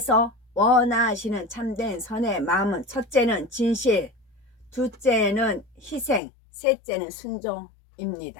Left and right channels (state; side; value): drops out; right; at 6.2 s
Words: 원하시는 참된 선의 마음은 첫째는 진실, 둘째는 희생, 셋째는